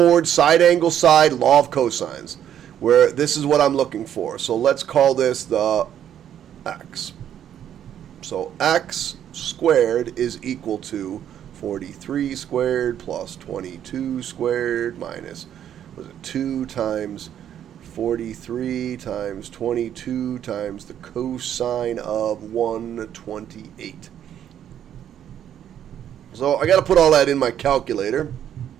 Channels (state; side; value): quieter; left; 10.1 dB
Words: side angle side law of cosines, where this is what I'm looking for. So let's call this the x. So x squared is equal to 43 squared plus 22 squared minus, was it 2 times 43 times 22 times the cosine of 128. So I got to put all that in my calculator.